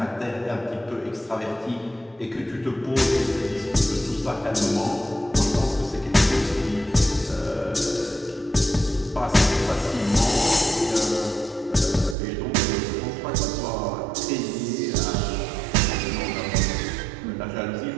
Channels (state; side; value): drops out; left; at 12.2 s